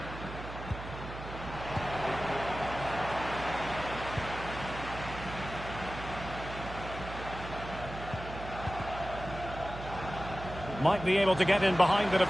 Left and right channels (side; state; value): right; noise; hum, 10 dB below the sound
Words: Might be able to get in behind the